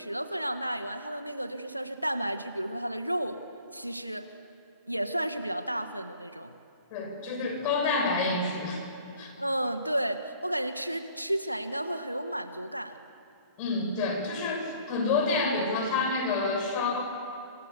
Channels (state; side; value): inverted; both; correlation -0.52